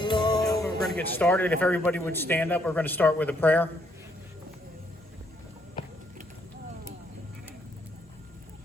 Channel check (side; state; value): both; normal; correlation 0.71